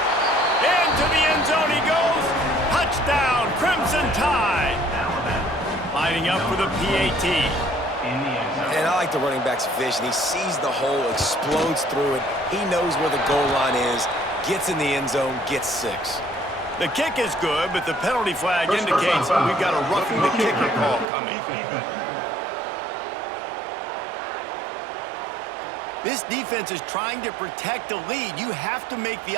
Into the end zone he goes. Touchdown, Crimson Tide. Lining up for the PAT. And I like the running back's vision. He sees the hole, explodes through it. He knows where the goal line is, gets in the end zone, gets 6. The kick is good, but the penalty flag indicates we've got a roughing the kicker call coming. This defense is trying to protect the lead. You have to make the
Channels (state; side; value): drops out; left; at 21.1 s